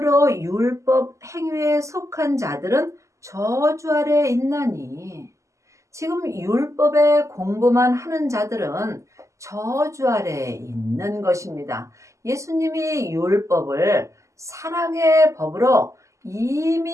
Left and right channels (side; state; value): left; late; 0.15 ms